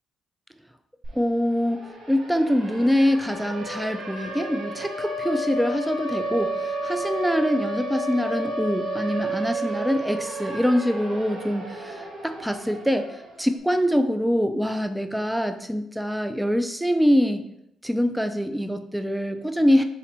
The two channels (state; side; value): normal; both; correlation 0.94